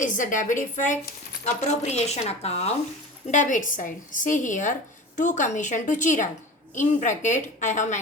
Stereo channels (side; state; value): both; normal; correlation 0.34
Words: the debit effect, appropriation account, debit side. See here, to commission to Chirag. In bracket I have